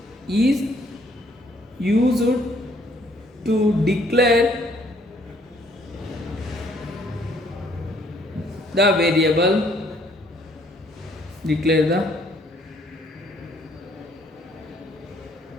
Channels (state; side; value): normal; both; correlation 0.64